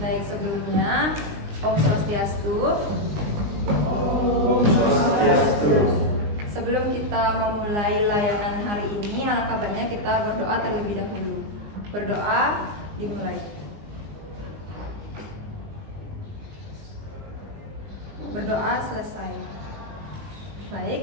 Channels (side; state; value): left; late; 19 ms